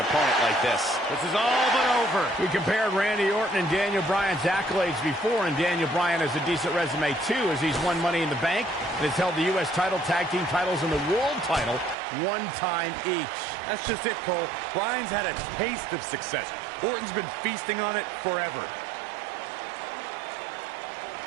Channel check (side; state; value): left; drops out; at 12.0 s